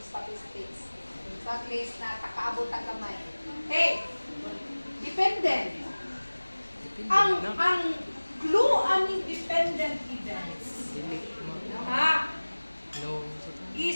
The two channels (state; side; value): inverted; both; correlation -1.00